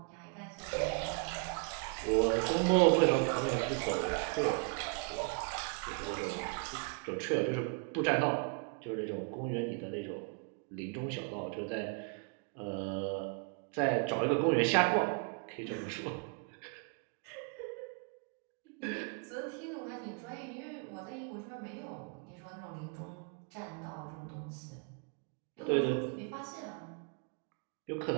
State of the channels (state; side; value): quieter; left; 39.2 dB